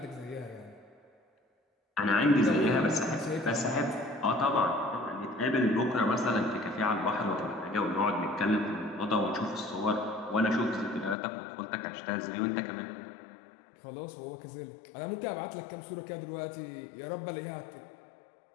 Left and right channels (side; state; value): right; drops out; at 11.2 s